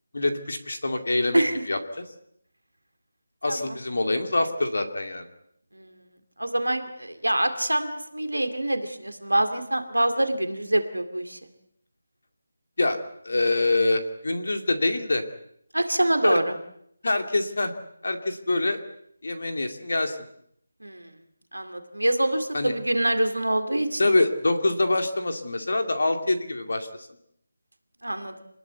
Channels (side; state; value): both; inverted; correlation -0.96